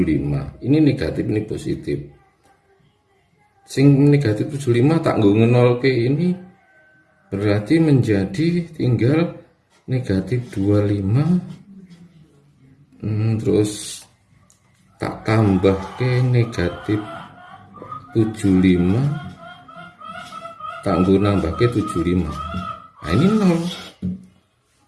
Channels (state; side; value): identical; both; correlation 1.00